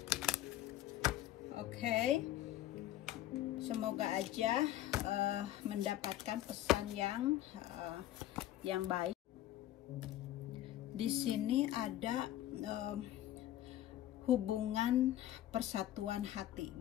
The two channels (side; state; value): right; quieter; 13.4 dB